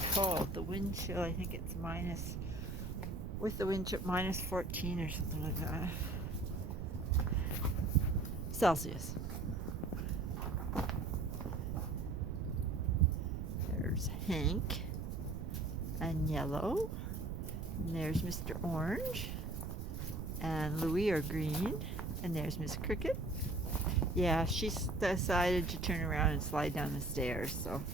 cold. The wind chill, I think it's minus, with the wind chill, minus 14 or something like that. Celsius. There's Hank and Yellow. And there's Mr. Orange. And Louis are green. And there's Miss Cricket. Yeah, she's decided to turn around and slide down the stairs. So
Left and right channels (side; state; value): right; noise; rumble, 4 dB below the sound